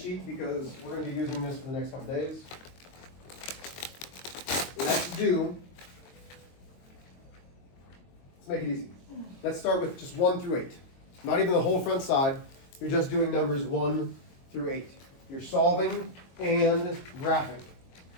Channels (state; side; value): late; right; 22 ms